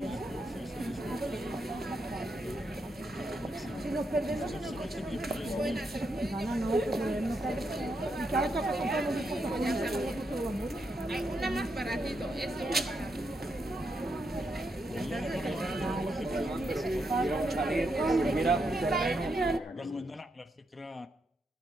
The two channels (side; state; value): both; normal; correlation 0.81